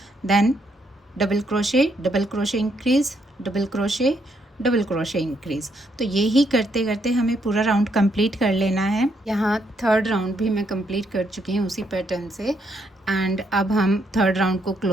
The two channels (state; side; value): normal; both; correlation 0.74